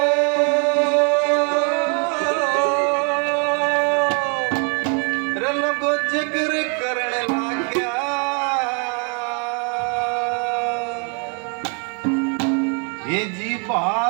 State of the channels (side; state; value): left; quieter; 37.5 dB